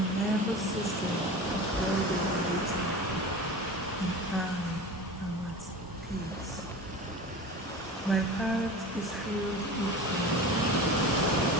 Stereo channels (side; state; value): both; normal; correlation 0.33